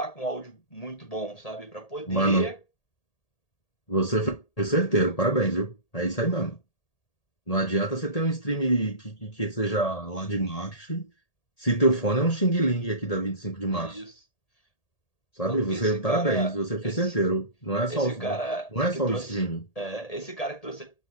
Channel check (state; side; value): late; right; 1.8 ms